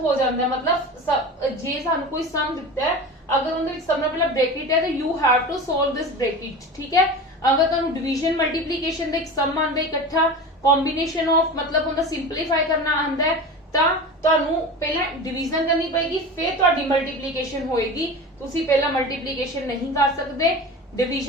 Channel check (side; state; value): both; normal; correlation 0.31